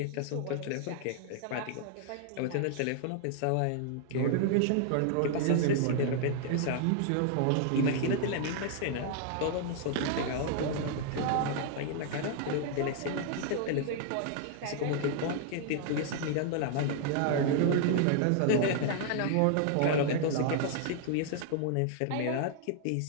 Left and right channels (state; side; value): different; both; correlation -0.01